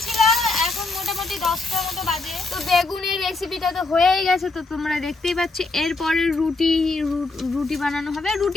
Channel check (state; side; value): quieter; right; 3.4 dB